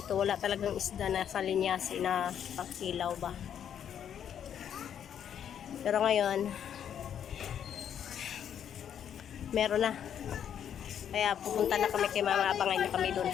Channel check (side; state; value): right; quieter; 9.1 dB